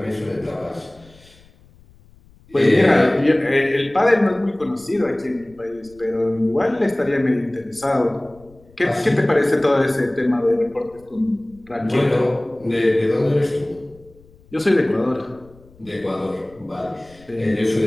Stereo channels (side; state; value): left; noise; rumble, 27 dB below the sound